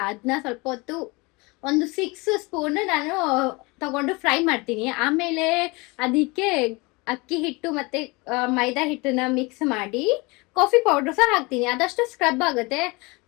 ಅದನ್ನ ಸ್ವಲ್ಪ ಹೊತ್ತು ಒಂದು 6 ಸ್ಪೂನ್ ನಾನು ತಗೊಂಡು ಫ್ರೈ ಮಾಡ್ತೀನಿ. ಆಮೇಲೆ ಅದಕ್ಕೆ ಅಕ್ಕಿ ಹಿಟ್ಟು ಮತ್ತೆ ಮೈದಾ ಹಿಟ್ಟನ್ನ ಮಿಕ್ಸ್ ಮಾಡಿ ಕಾಫಿ ಪೌಡರ್ ಸಹ ಹಾಕ್ತೀನಿ. ಅದಷ್ಟು ಸ್ಕ್ರಬ್ ಆಗುತ್ತೆ.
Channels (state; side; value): quieter; right; 25.9 dB